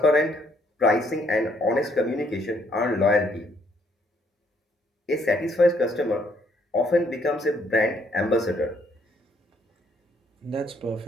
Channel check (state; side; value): normal; both; correlation 0.68